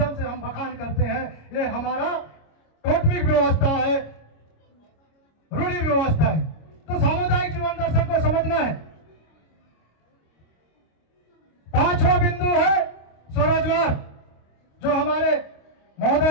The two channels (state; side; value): late; right; 26 ms